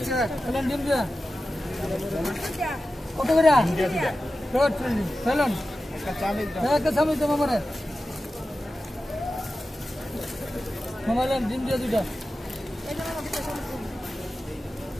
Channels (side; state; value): both; normal; correlation 0.93